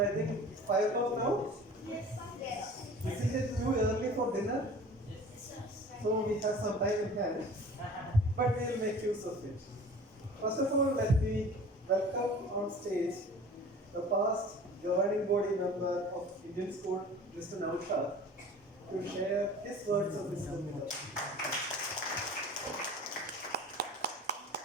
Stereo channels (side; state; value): both; normal; correlation 0.43